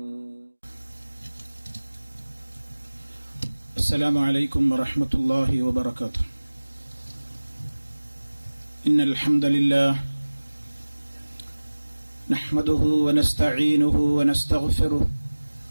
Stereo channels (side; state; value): both; inverted; correlation -1.00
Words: السلام عليكم ورحمة الله وبركاته. إن الحمد لله نحمده ونستعينه ونستغفره